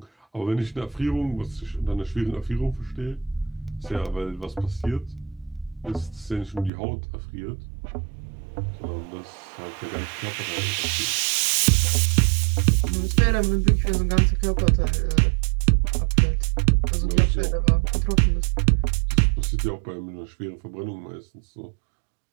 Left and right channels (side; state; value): left; drops out; at 6.7 s